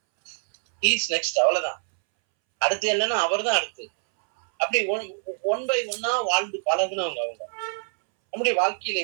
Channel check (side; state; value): left; silent; 62 dB below the other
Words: இஸ் நெக்ஸ்ட், அவ்வளவுதான். அடுத்து என்னன்னா அவர் தான் அடுத்து. அப்படி ஒன் பை ஒன்னா வாழ்ந்து பழகுனவங்க அவங்க. நம்முடைய வாழ்க்கையில